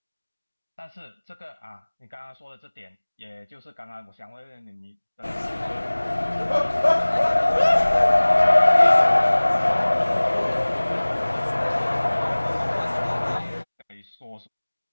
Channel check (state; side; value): inverted; both; correlation -1.00